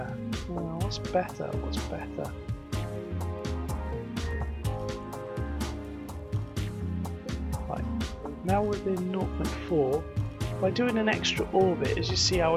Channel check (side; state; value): both; identical; correlation 1.00